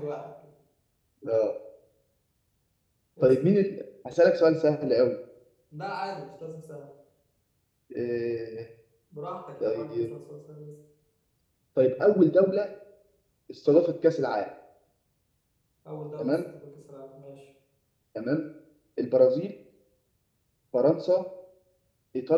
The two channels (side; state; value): both; identical; correlation 1.00